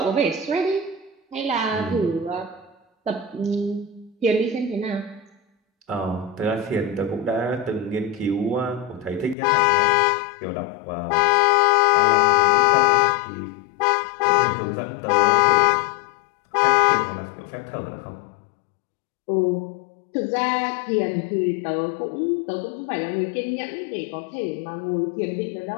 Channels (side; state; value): right; drops out; at 9.3 s